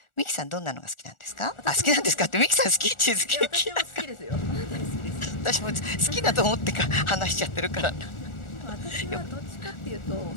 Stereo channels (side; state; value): right; late; 1.4 ms